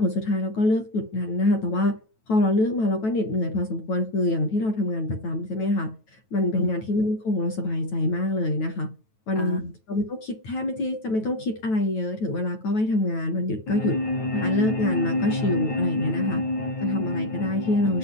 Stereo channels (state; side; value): late; right; 9.2 ms